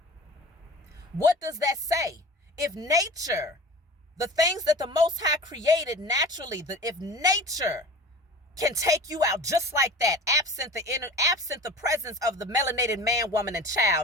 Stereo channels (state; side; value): normal; both; correlation 0.38